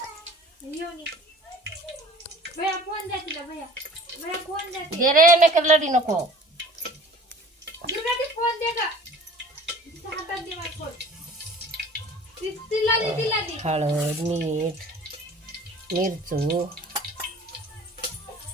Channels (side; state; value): both; normal; correlation 0.46